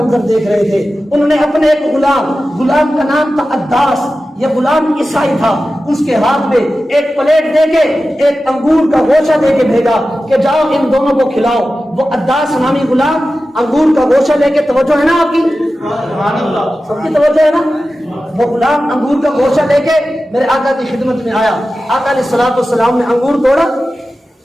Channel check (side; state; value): both; normal; correlation 0.94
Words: دیکھ رہے تھے، انہوں نے اپنے ایک غلام کا نام تھا عداس، یہ غلام عیسائی تھا، اس کے ہاتھ میں ایک پلیٹ دے کے ایک انگور کا گوشہ دے کے بھیجا کہ جاؤ ان دونوں کو کھلاؤ۔ وہ عداس نامی غلام انگور کا گوشہ لے کے، توجہ ہے نا آپ کی، سب کی توجہ ہے نا، وہ غلام انگور کا گوشہ لے کے میرے آقا کی خدمت میں آیا۔ آقا علیہ السلام نے انگور توڑا،